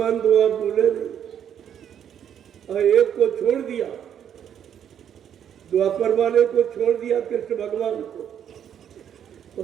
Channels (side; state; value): left; quieter; 9.2 dB